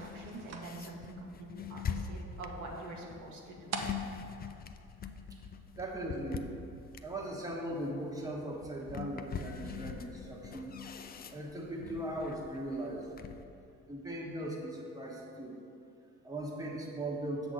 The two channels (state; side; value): normal; both; correlation 0.44